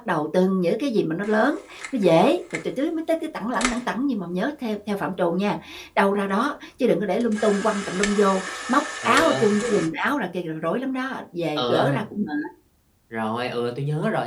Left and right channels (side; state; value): both; identical; correlation 1.00